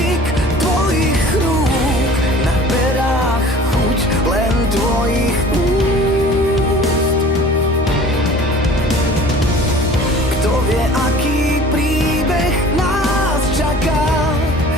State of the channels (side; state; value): both; normal; correlation 0.45